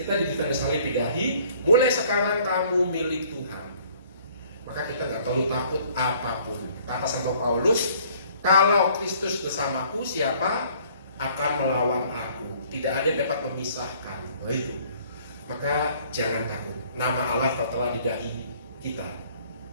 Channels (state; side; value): inverted; both; correlation -0.58